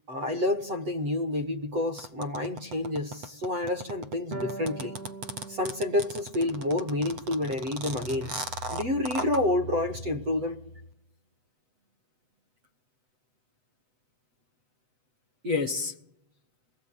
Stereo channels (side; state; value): left; late; 7.9 ms